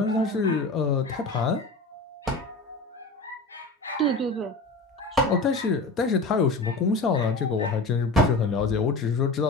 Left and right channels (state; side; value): quieter; right; 3.1 dB